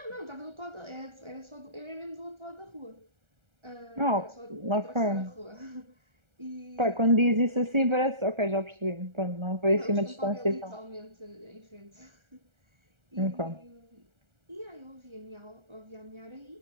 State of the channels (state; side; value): late; left; 1.3 ms